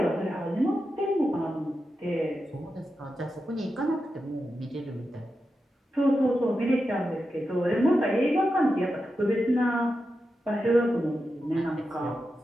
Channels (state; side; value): normal; both; correlation 0.89